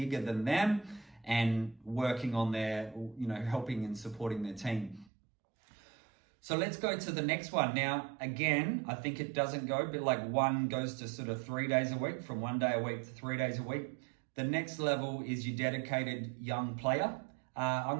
than them and working on their, helping and supporting their team. So let's go to the next one. Now, again, I think it doesn't go, but like one goes to sort of 3 days a week, from 1 day a week to 3 days a week. The next level is your dedicated young player. I'm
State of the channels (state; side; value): drops out; left; at 5.1 s